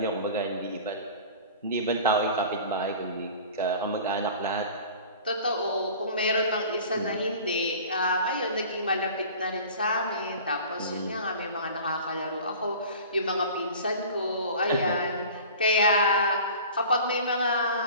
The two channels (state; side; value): inverted; both; correlation -0.41